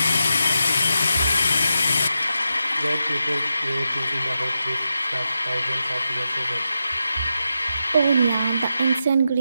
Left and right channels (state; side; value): inverted; both; correlation -0.87